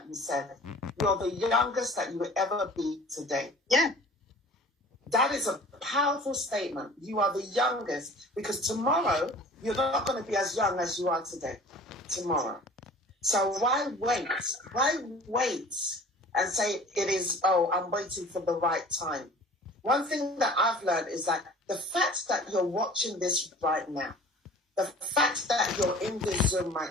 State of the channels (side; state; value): both; normal; correlation 0.46